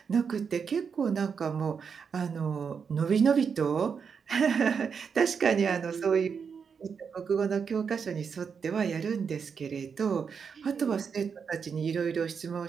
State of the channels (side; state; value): left; quieter; 6.3 dB